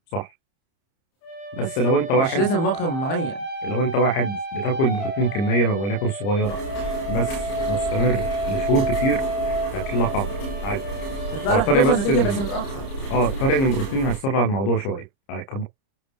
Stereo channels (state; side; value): late; right; 30 ms